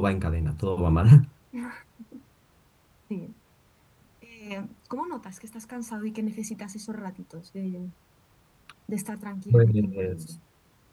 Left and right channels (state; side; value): identical; both; correlation 1.00